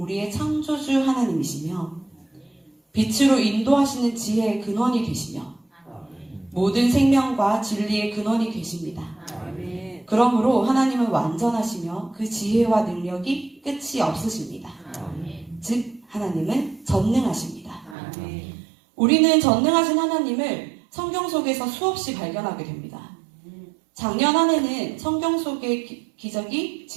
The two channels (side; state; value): left; drops out; at 17.9 s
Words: 창조주 하나님이시며 빛으로 인도하시는 지혜의 근원이 되시며 모든 생명과 진리의 근원이 되십니다. 그러므로 하나님은 완전하시며 그 지혜와 능력이 끝이 없으십니다. 즉 하나님은 전능하십니다. 우리는 전능하신 하나님을 성경 속에서 수없이 발견하게 됩니다. 작년 한 해는 성경 속의 기적이